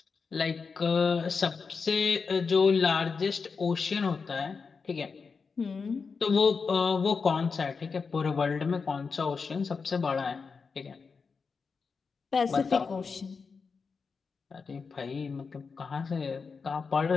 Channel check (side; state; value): right; quieter; 5.1 dB